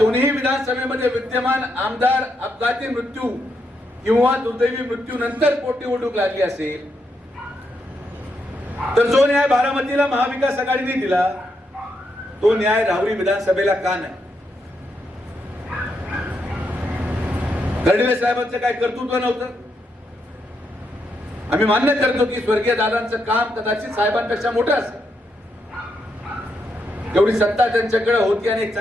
विधानसभेमध्ये विद्यमान आमदार अपघाती मृत्यू किंवा दुर्दैवी मृत्यू नंतर पोटनिवडणूक लागली असेल, तर जो न्याय बारामतीला महाविकास आघाडीने दिला तो न्याय राहुरी विधानसभेला का नाही? कर्डिले साहेबांचं काय कर्तृत्व नव्हतं? आम्ही मान्य करतो की स्वर्गीय दादांचं काम कदाचित साहेबांपेक्षा मोठं असेल, एवढी सत्ता त्यांच्याकडे होती आणि एक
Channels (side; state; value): both; normal; correlation 0.80